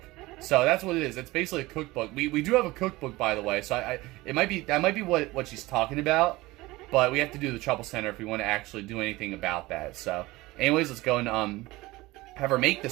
So that's what it is. It's basically a cookbook. We do have a cookbook, by the way. So that might be what she's talking about. But we have to do the Trouble Center if we want to actually do anything about that. So, anyways, let's go and have her make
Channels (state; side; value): quieter; left; 20.1 dB